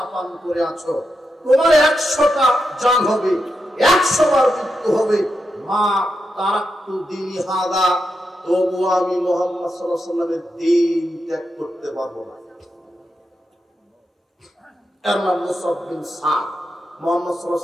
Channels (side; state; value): both; normal; correlation 0.86